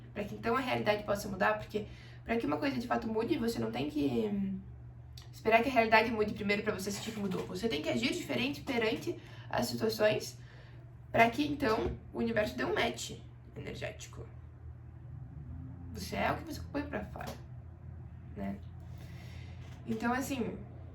para que então a realidade possa mudar, porque para que uma coisa de fato mude, você não tem que esperar que a realidade mude primeiro para você sentir que mudou. Você tem que agir diferente perante as situações para que então o universo dê um match energético. Você é o que você põe pra fora, né? Então, assim,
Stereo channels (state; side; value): identical; both; correlation 1.00